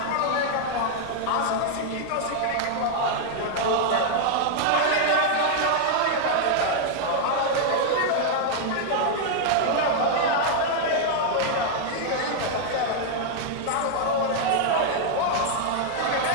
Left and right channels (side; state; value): both; different; correlation 0.00